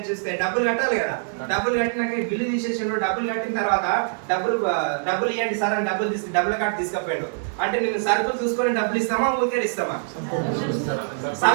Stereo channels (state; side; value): silent; left; digital silence